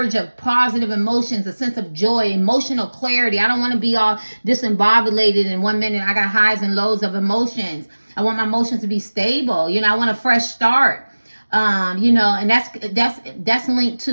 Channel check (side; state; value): both; inverted; correlation -1.00